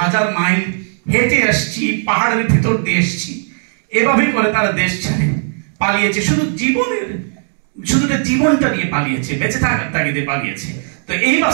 হাজার মাইল হেঁটে আসছি, পাহাড়ের ভিতর দিয়ে এসছি, এভাবে করে তারা দেশ ছেড়ে পালিয়েছে, শুধু জীবনটা নিয়ে পালিয়েছে, বেঁচে থাকার তাগিদে পালিয়েছে। তো এই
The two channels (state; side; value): silent; left; 58 dB below the other